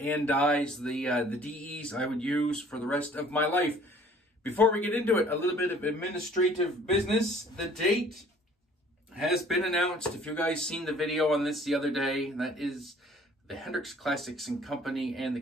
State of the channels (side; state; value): both; normal; correlation 0.54